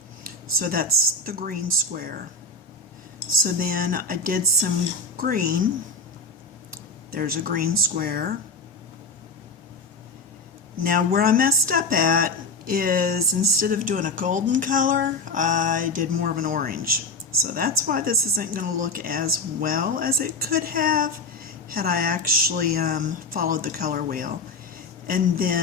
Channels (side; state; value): right; quieter; 3.2 dB